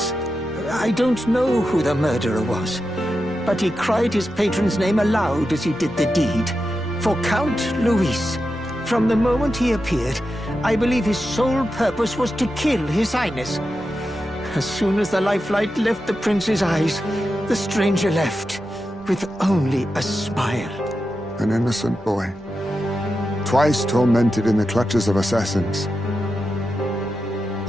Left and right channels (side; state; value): both; normal; correlation 0.89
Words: I don't know who the murderer was, but he cried his patron's name aloud as he did the deed. For Count Luis. From the moment he appeared, I believe his sole purpose was to kill His Highness. As soon as the lifelight left the prince's eyes, the stranger left, with only a smile. An innocent boy. Twice tormented in the clutches of assassins.